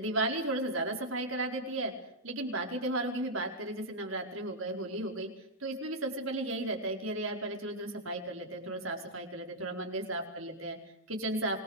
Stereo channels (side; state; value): both; normal; correlation -0.05